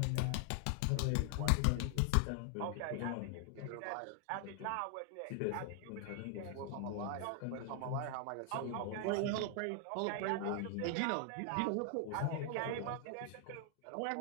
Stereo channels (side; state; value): both; different; correlation 0.00